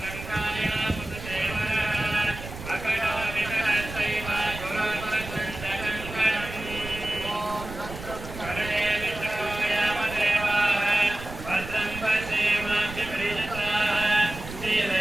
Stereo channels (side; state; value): right; noise; rumble, 11 dB below the sound